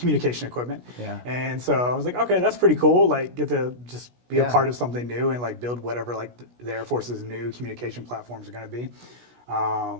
equipment. Yeah. And so I was like, okay, that's pretty cool. Like, get to just be a Yeah. part of something new and like build whatever like the Air Force's new communication platforms are going to be.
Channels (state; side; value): late; left; 16 ms